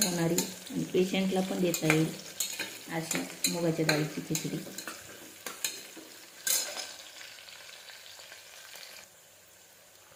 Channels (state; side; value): identical; both; correlation 1.00